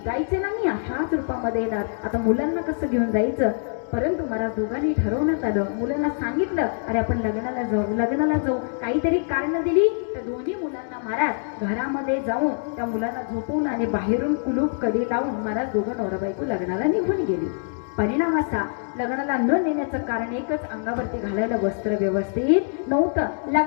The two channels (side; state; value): right; silent; digital silence